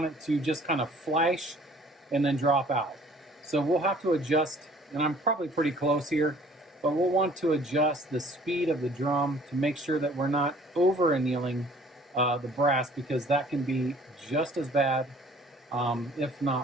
it to just kind of flash and then drop out. So we'll have to adjust, and I'm probably pretty close here, but we'll want to adjust the speed of the drum to make sure that we're not over annealing the brass, because that can be just as bad, if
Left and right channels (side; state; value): both; normal; correlation 0.54